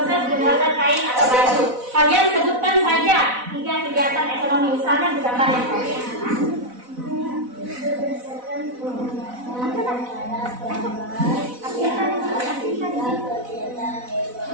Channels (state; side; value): late; left; 4.0 ms